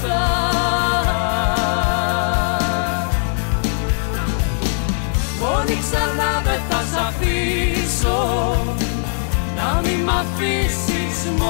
Μόνη ξανά δεν θα σ' αφήσω, να μη μ' αφήσεις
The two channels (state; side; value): silent; right; 66 dB below the other